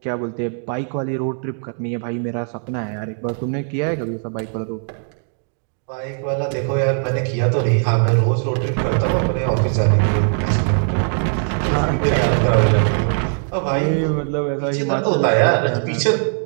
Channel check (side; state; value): left; silent; 60 dB below the other